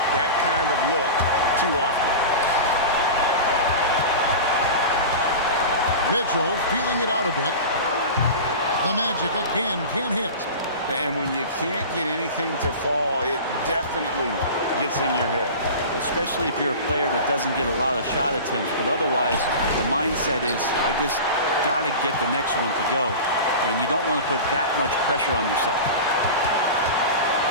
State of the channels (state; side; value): inverted; both; correlation -0.31